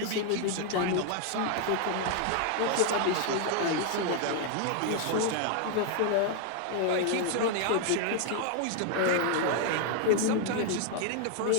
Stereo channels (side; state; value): both; different; correlation 0.00